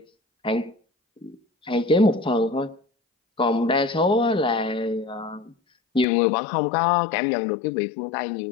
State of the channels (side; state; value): right; drops out; at 6.1 s